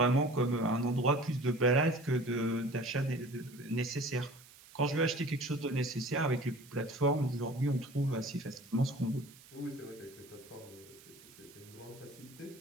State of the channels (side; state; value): right; noise; hiss, 22 dB below the sound